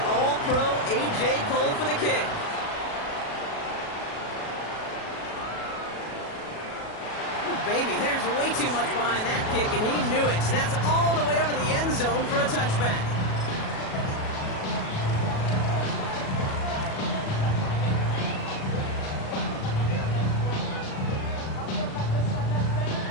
All-Pro A.J. Cole for the kick. Baby, there's way too much behind that kick, and he knew it. That's all the way over the end zone for a touchback.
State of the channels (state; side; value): late; right; 37 ms